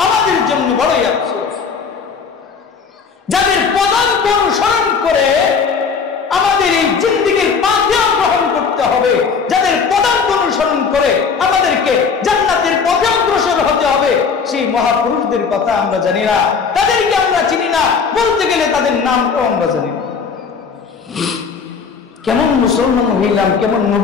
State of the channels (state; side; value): quieter; right; 5.7 dB